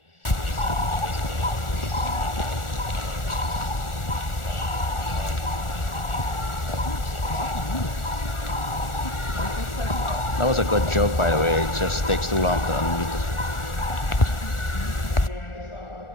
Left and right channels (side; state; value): right; late; 1.4 ms